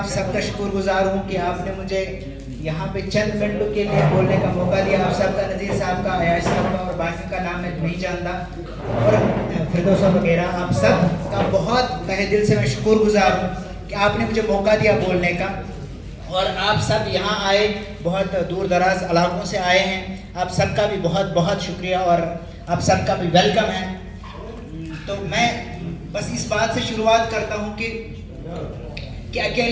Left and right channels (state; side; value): identical; both; correlation 1.00